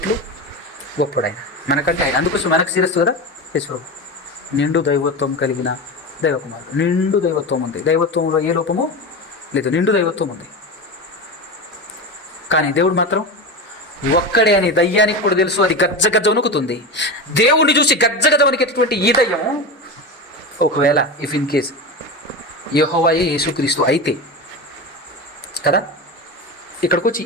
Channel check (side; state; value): both; normal; correlation 0.22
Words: గొప్పడైన మనకంటే ఆయన. అందుకోసం మనకు శిరస్సు కదా యేసు. నిండు దైవత్వం కలిగిన దైవకుమారుడు. నిండు దైవత్వం ఉంది. దైవత్వంలో ఏ లోపము లేదు, నిండు దైవత్వం ఉంది. కానీ దేవుడు మాత్రం ఒక్కడే అని దయ్యానికి కూడా తెలుసు. అది గజ్జ వణుకుతుంది. దేవుణ్ణి చూసి గజ్జ వణికేటటువంటి ఈ దయ్యం ఒకవేళ ఇన్ కేస్ యెహోవాయే యేసుక్రీస్తు అయితే కదా, ఇక్కడికి వచ్చి